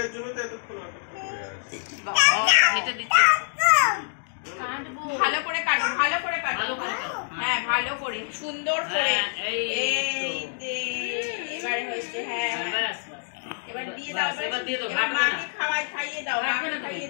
জন্য তো এতক্ষণ অপেক্ষা করে আছে এটা দিচ্ছে। কাটবো। ভালো করে কাটো, ভালো করে কাটো। ভালো করে কাটো। হ্যাঁ ভালো করে, সুন্দর করে। হ্যাঁ, এই এই যে এবারে হয়েছে। হ্যাঁ হ্যাঁ, হ্যাঁ। ব্যাস, ব্যাস। এবার দিয়ে দাও, এবার দিয়ে দাও, এবার ভাগ করে মাকে খাইয়ে দাও, ভাগ মাকে করে দাও। খাইয়ে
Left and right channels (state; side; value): silent; right; digital silence